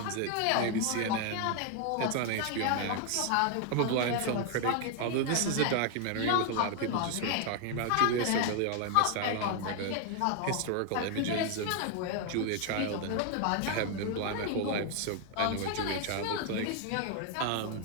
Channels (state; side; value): different; both; correlation 0.00